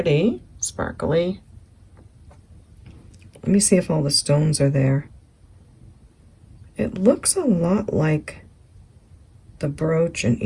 sparkly. Let me see if all the stones are there. It looks a lot like the brooch and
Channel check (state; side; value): identical; both; correlation 1.00